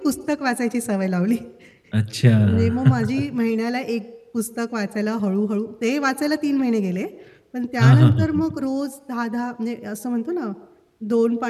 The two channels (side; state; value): both; identical; correlation 1.00